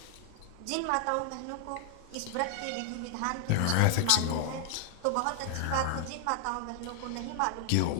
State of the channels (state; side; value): different; both; correlation 0.00